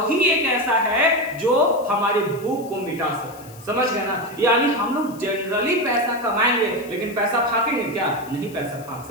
एक ऐसा है जो हमारी भूख को मिटा सकता है। समझ गए ना? यानी हम लोग जनरली पैसा कमाएंगे लेकिन पैसा फाकेंगे क्या? नहीं पैसा फाक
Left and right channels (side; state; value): left; noise; hiss, 21 dB below the sound